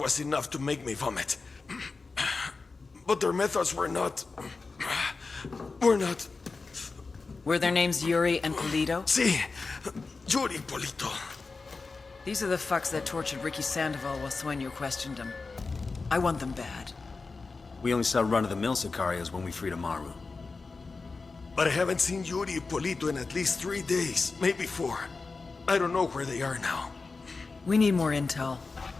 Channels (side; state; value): right; quieter; 4.1 dB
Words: was enough to make me vomit. But their methods were not... Were their names Yuri and Polito? Si, Yuri Polito. These are the fucks that tortured Ricky Sandoval while Sueño questioned him. I want them bad. We only saw run-of-the-mill Sicarios when we freed Amaru. But I haven't seen Yuri and Polito in at least 3 days, maybe 4. I don't know where they are now. We need more intel.